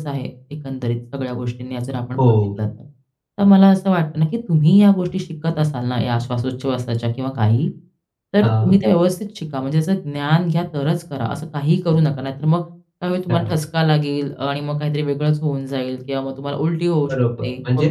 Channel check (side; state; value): both; identical; correlation 1.00